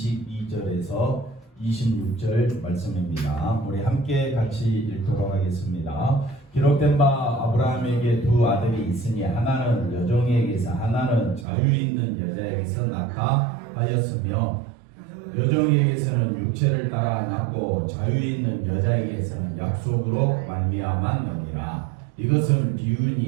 26절 말씀입니다. 우리 함께 같이 읽도록 하겠습니다. 기록된 바 아브라함에게 두 아들이 있으니 하나는 여종에게서 하나는 자유 있는 여자에게서 낳다 하였으며 여종에게서는 육체를 따라 낳고 자유 있는 여자에게서는 약속으로 말미암았느니라. 이것은 비유니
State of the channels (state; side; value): drops out; left; at 11.5 s